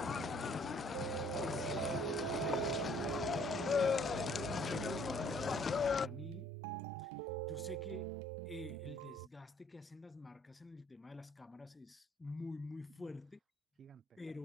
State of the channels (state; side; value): normal; both; correlation 0.60